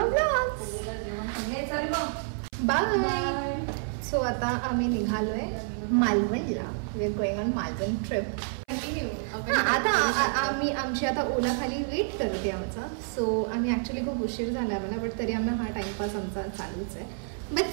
Bye. So आता आम्ही निघालोय मालवणला. We are going on Malvan trip. आता आम्ही आमची आता ओला खाली वेट करते आमचा. सो आम्ही ऍक्च्युली खूप उशीर झाला आम्हाला, बट तरी आम्हाला हा टाइमपास आमचा चालूच आहे. बट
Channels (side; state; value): left; silent; 59 dB below the other